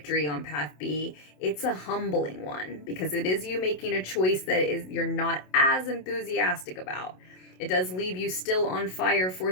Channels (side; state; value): right; late; 27 ms